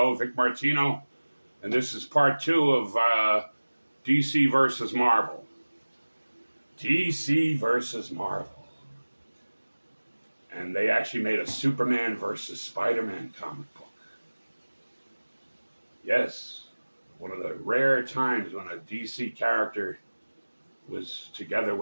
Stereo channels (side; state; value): both; inverted; correlation -1.00